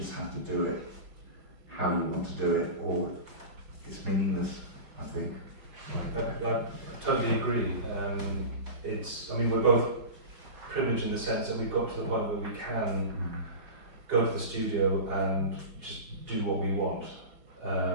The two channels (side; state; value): left; late; 5.0 ms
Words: have to do it how you want to do it, or it's meaningless, I think. I totally agree. We're both privileged in the sense that we've got to the point where we can go to the studio and just do what we want.